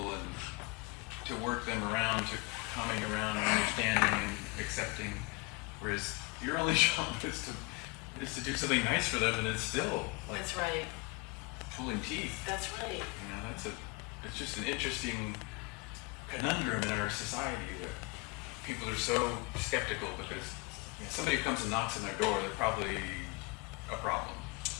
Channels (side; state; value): right; quieter; 26.6 dB